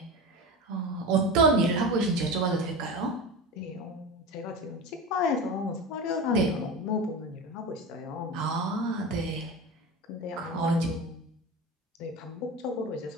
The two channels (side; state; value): both; normal; correlation 0.26